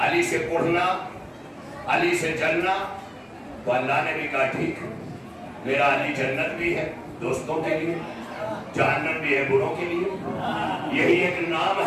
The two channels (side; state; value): both; identical; correlation 1.00